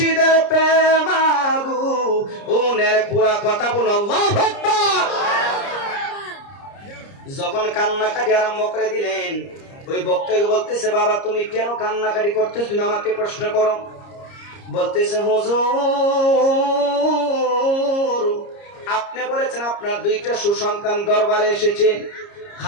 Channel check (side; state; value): right; late; 30 ms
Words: প্রেমাগু উনের পোড়া। কথা বলো আল্লাহু আকবার। যখন কান্নাকাটি আরম্ভ করে দিলেন, ওই বক্তাকে বলতেছে, বাবা তুমি কেন কান্নাকাটি করতেছ, তুমি আমাকে প্রশ্ন করো। বলতেছে, হুজুর আপনি বলেছেন আপনার 2টা সুসন্তান দরবারে এসেছে,